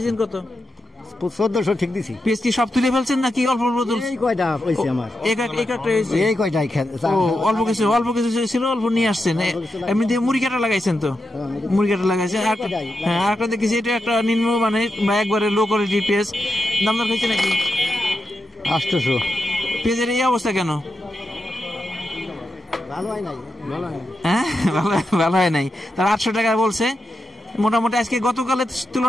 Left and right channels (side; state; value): both; normal; correlation 0.87